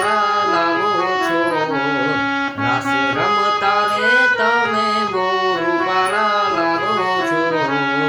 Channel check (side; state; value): both; identical; correlation 1.00